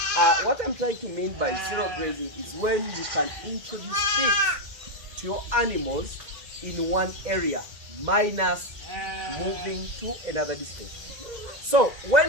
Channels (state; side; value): late; left; 2.0 ms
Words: What I'm trying to mean by zero grazing is when you can introduce feed to your animals in one area, minus moving to another distance. So